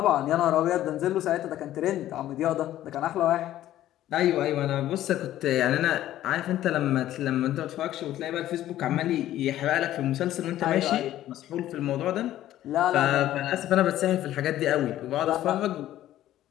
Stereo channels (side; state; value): right; quieter; 13.3 dB